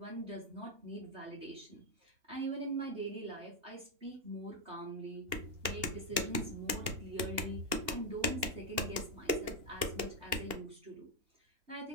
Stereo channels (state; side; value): late; left; 2.8 ms